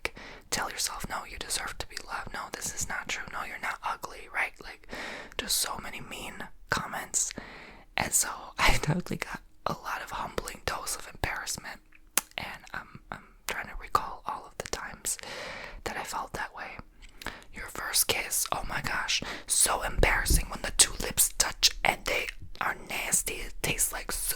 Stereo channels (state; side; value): identical; both; correlation 1.00